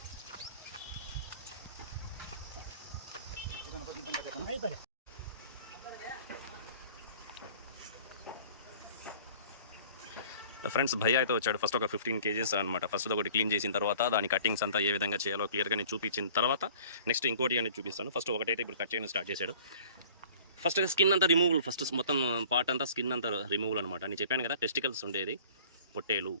ఫ్రెండ్స్ భయ్య అయితే వచ్చాడు. ఫస్ట్ ఒక 15 కేజెస్ అనమాట. ఫస్ట్ ఒకటి క్లీన్ చేసిన తర్వాత దాని కటింగ్స్ అంతా ఏ విధంగా చేయాలో క్లియర్గా నేను చూపించిన తర్వాత నెక్స్ట్ ఇంకోటి అనేది చూపిస్తాను. ఫస్ట్ ఒకటైతే ఇప్పుడు కట్ చేయడం స్టార్ట్ చేశాడు. ఫస్ట్ స్కిన్ అంతా రిమూవల్, ఫస్ట్ మొత్తం పార్ట్ అంతా స్కిన్ అంతా రిమూవల్ అనమాట. నేను చెప్పాను కదా టెస్టికల్స్ ఉండేది పొట్టేలు.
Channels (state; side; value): inverted; both; correlation -0.49